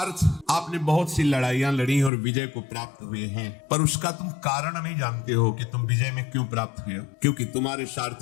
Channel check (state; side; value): drops out; right; at 2.1 s